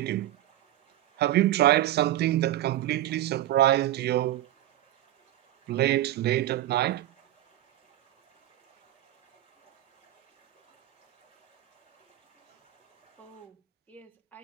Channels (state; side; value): quieter; left; 14.1 dB